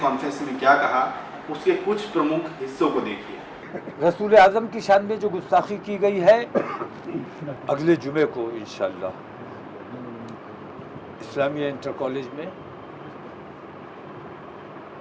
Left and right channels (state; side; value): identical; both; correlation 1.00